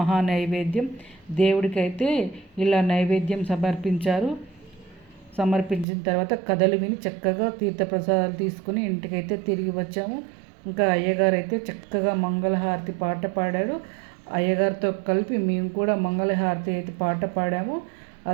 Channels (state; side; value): drops out; left; at 5.9 s